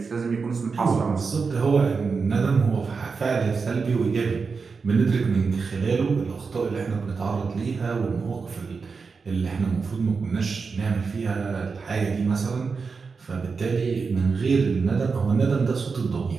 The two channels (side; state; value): left; quieter; 5.0 dB